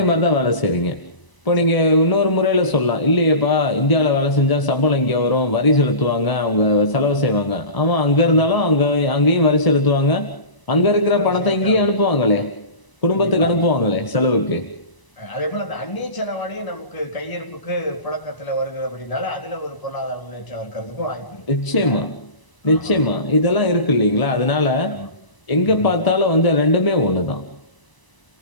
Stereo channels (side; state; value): right; late; 1.0 ms